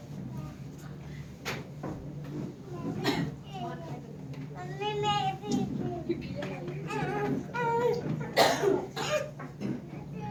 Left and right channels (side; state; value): both; identical; correlation 1.00